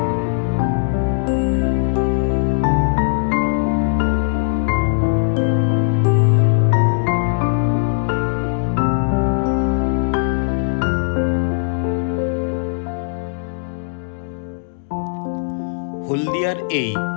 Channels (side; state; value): right; silent; digital silence